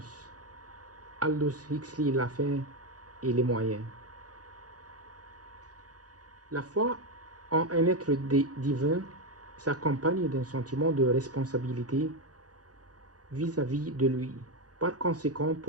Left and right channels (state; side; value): late; left; 0.68 ms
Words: Aldous Huxley, la fin et les moyens. La foi en un être divin s'accompagne d'un sentiment de responsabilité vis-à-vis de lui. Par conséquent,